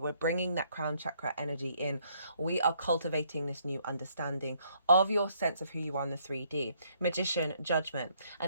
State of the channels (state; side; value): inverted; both; correlation -0.69